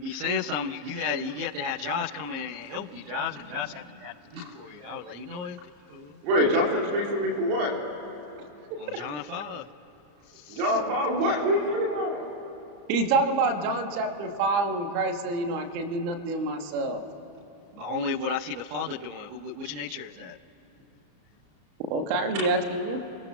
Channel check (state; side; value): late; left; 34 ms